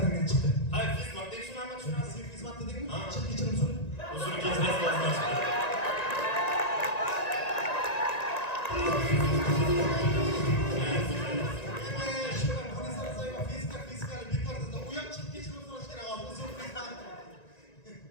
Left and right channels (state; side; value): late; right; 1.9 ms